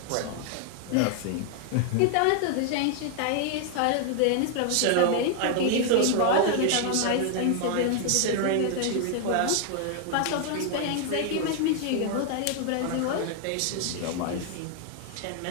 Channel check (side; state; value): both; different; correlation 0.00